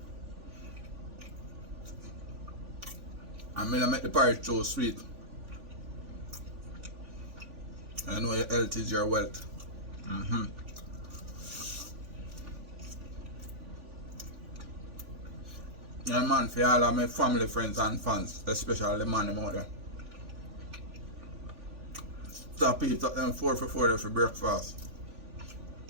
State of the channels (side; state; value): left; late; 3.5 ms